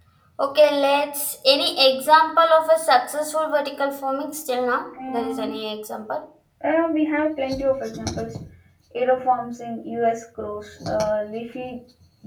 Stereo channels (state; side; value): identical; both; correlation 1.00